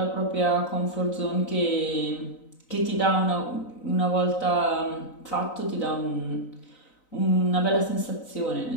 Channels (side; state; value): right; late; 3.9 ms